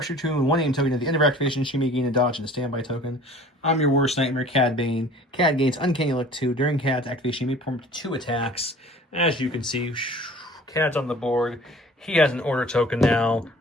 2 and 1 aim token at the end of her activation. She may gain a dodge and a standby token. I'm your worst nightmare, Cad Bane. Cad gains Uncanny Look 2. During Cad's activation, you may perform 2 attacks. As you can see, Cad's on the board. He has an order token now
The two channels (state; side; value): normal; both; correlation 0.47